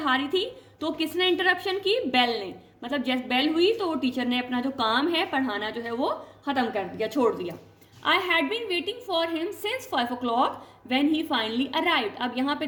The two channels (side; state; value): both; identical; correlation 1.00